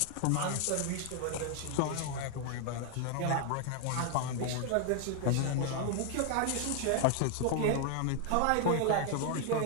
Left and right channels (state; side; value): different; both; correlation 0.00